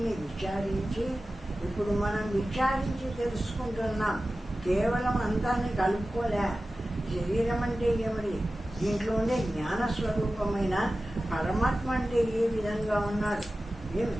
విచారించి ఇప్పుడు మనం విచారించి తెలుసుకుంటున్నాం. కేవలం అంతాన్ని కలుపుకోలే. శరీరం అంటే ఏమిటి, దీంట్లో ఉండే జ్ఞానస్వరూపమైన పరమాత్మ అంటే ఏ విధంగా ఉన్నాడు, ఏమి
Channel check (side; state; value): both; normal; correlation 0.95